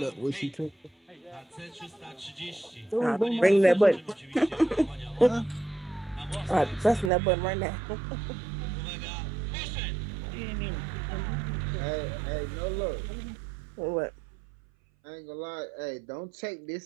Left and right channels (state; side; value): drops out; left; at 7.1 s